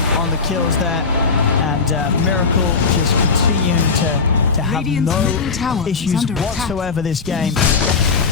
on the kills there, and Miracle just continuing to have no issues whatsoever this game,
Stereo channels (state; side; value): quieter; right; 4.8 dB